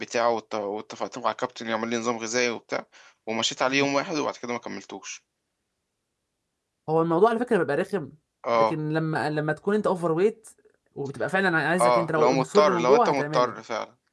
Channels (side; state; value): both; identical; correlation 1.00